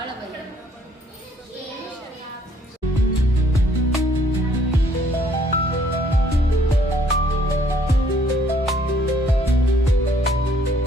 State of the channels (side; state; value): both; normal; correlation 0.63